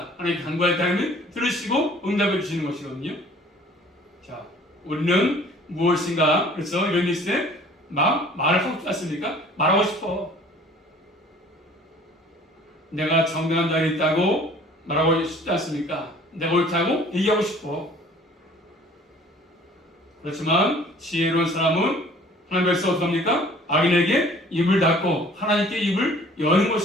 하나님 간구할 때 하나님 들으시고 응답해 주시는 것이거든요. 자, 우리는 무엇인가 그래서 이런 일때 말을 하고 싶지 않습니까? 말하고 싶어. 내가 정당한 자리에 있다고 말하고 싶지 않습니까? 내가 옳다고 얘기하고 싶어. 그렇지만 지혜로운 사람은 하나님께서 어떻습니까? 악인에게 입을 닫고 하나님께 입을 여는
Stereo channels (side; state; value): both; normal; correlation 0.51